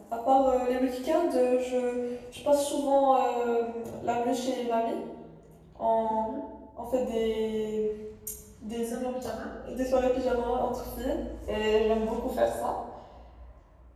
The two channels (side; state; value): both; identical; correlation 1.00